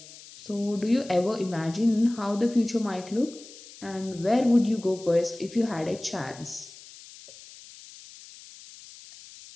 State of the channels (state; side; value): noise; left; hiss, 19 dB below the sound